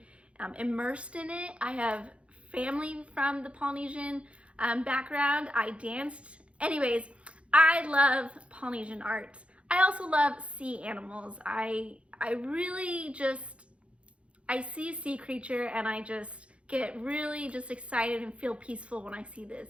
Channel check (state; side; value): late; left; 0.061 ms